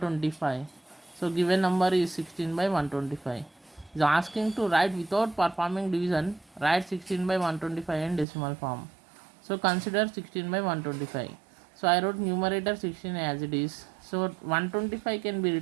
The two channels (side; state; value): left; drops out; at 8.2 s